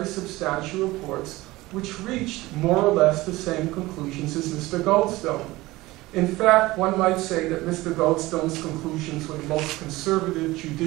substantial reports which reached more or less the same conclusions as Mr. Goldstone. In fact, one might say that Mr. Goldstone's conclusions were the most conservative,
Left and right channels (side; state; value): left; quieter; 19.3 dB